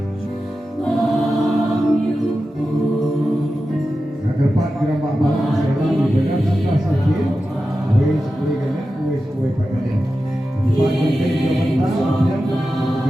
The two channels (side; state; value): both; normal; correlation 0.92